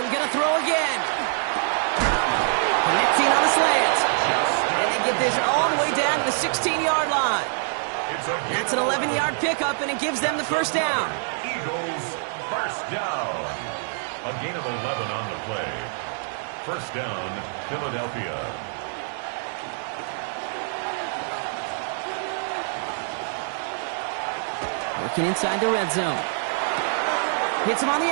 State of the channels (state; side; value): silent; left; 60 dB below the other